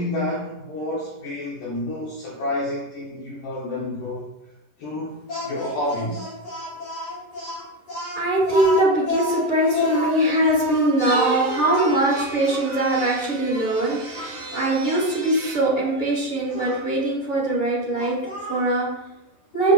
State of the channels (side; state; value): right; late; 11 ms